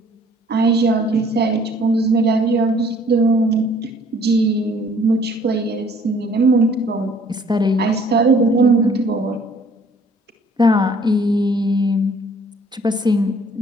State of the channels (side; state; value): both; normal; correlation 0.57